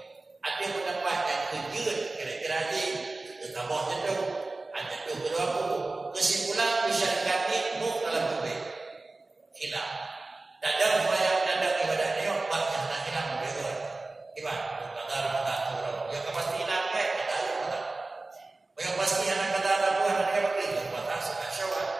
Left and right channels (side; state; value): left; quieter; 3.2 dB